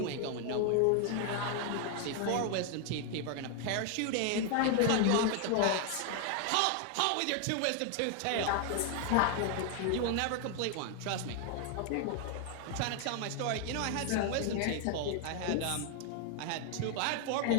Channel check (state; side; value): different; both; correlation 0.00